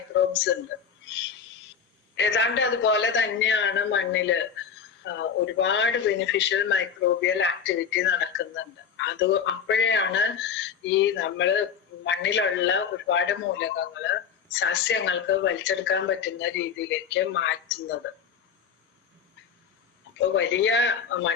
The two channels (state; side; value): quieter; right; 7.1 dB